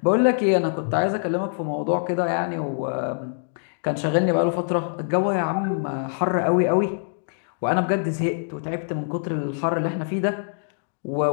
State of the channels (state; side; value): silent; right; digital silence